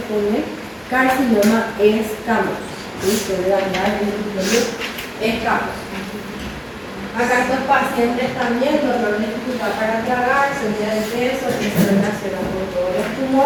con el carcinoma escamoso. Suele dañar el epitelio escamoso. Acá estos pacientes también dolor de dificultad para tragar, subida de peso, que se relaciona con todos los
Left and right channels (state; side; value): identical; both; correlation 1.00